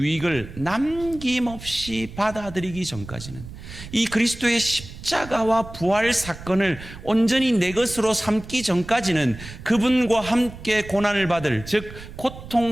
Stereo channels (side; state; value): right; noise; rumble, 14 dB below the sound